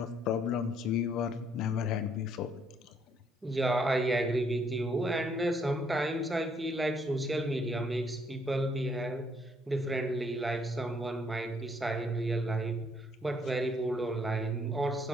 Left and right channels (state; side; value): normal; both; correlation 0.68